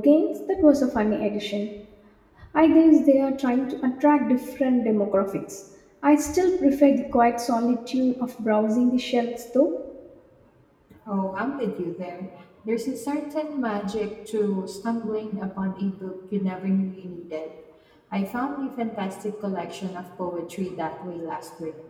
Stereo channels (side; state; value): both; identical; correlation 1.00